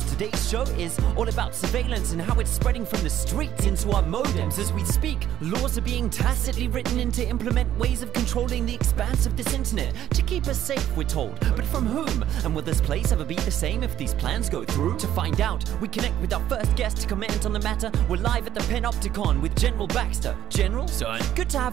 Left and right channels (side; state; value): left; quieter; 11.8 dB